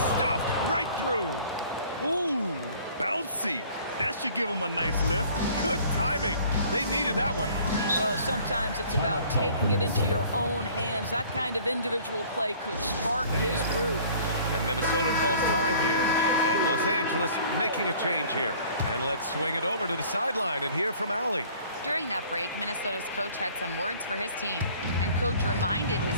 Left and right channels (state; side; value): inverted; both; correlation -0.52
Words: stuffed right through. Ooh, bouncy. That should give him a nice lift. Good timing. They needed that one. Well, sometimes it's about taking it into your own hands. That kind of individual play could spark his groove. And Minnesota calls time here. And Los Angeles making a change here. And let's swing it over to the sideline and hear from Allie. During that break, Minnesota's coach had some words for his team. And coach reminded